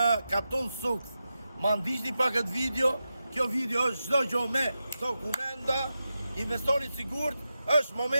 Katun Sukth. Ma ndiqni pa këtë video, kjo video është çdo gjë me dokumenta, investoni sigurt, është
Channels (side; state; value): both; inverted; correlation -0.91